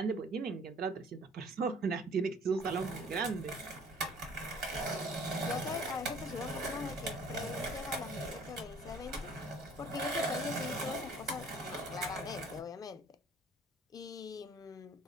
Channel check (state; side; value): normal; both; correlation 0.53